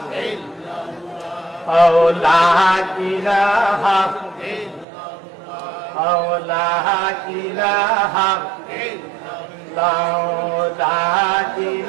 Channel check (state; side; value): drops out; left; at 4.9 s